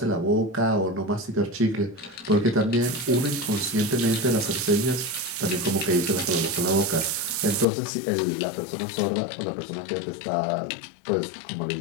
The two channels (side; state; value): right; drops out; at 7.7 s